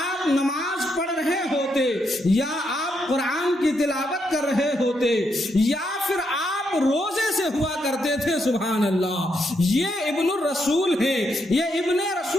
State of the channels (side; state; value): both; normal; correlation 0.79